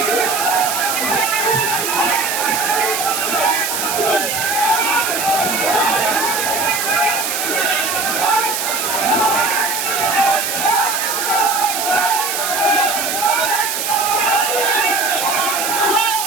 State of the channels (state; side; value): noise; right; hiss, 2 dB below the sound